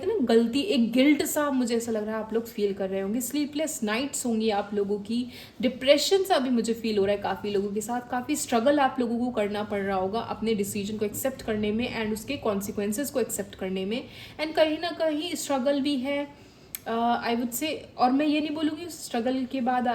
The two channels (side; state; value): both; identical; correlation 1.00